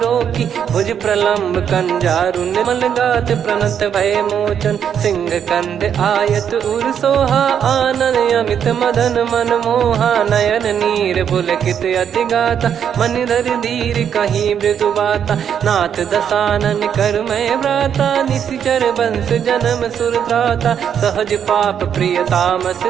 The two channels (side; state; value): left; quieter; 8.4 dB